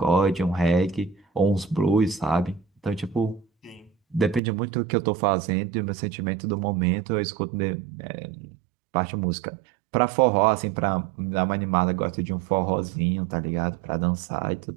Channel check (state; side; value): drops out; left; at 4.4 s